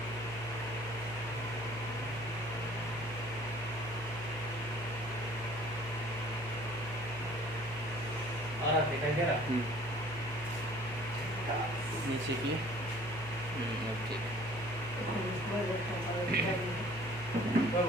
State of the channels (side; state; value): right; noise; hum, 14 dB below the sound